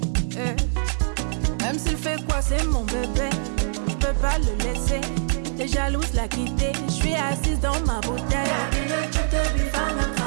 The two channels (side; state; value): left; silent; digital silence